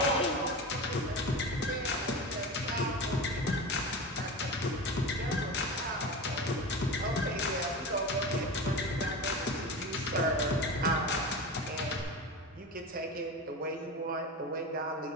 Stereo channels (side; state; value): both; normal; correlation 0.27